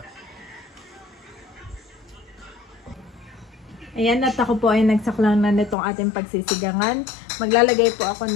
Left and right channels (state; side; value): drops out; right; at 5.8 s